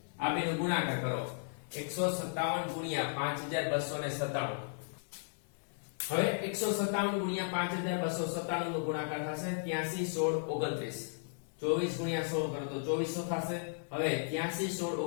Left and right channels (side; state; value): right; silent; digital silence